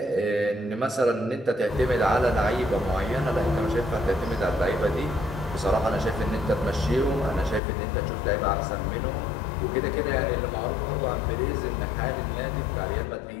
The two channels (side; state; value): right; drops out; at 7.6 s